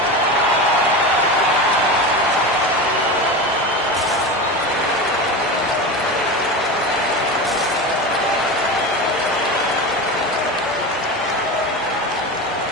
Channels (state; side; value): normal; both; correlation 0.25